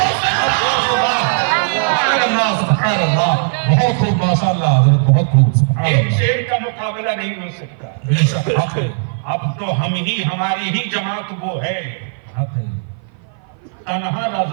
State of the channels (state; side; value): silent; left; 55 dB below the other